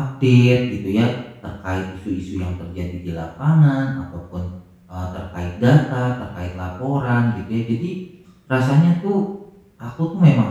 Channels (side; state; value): both; identical; correlation 1.00